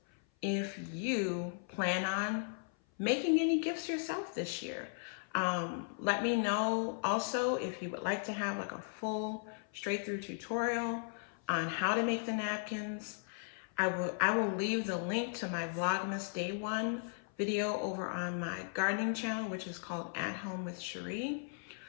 if you plan on making any gifts yourself this year. Let me know also if you would like to have like a full straight through tutorial on how to make the napkins. I will leave the link to my Vlogmas Day 1 video over on my gardening channel, which is called At Home with Cherie.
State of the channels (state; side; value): silent; right; 53 dB below the other